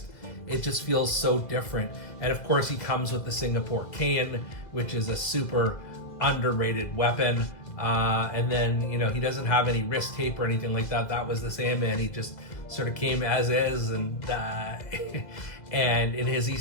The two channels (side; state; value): right; late; 2.0 ms